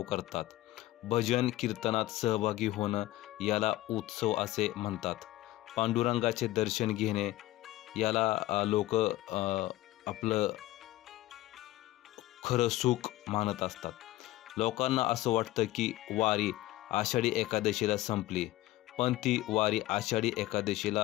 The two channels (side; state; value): right; quieter; 16.7 dB